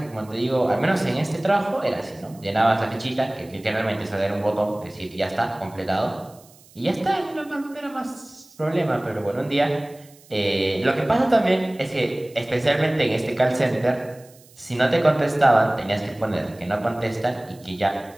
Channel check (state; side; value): noise; right; hiss, 26 dB below the sound